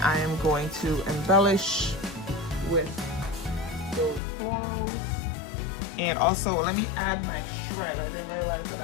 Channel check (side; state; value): right; drops out; at 4.2 s